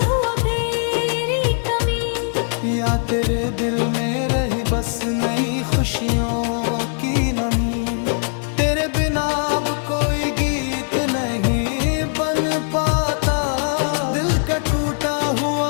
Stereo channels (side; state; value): right; silent; digital silence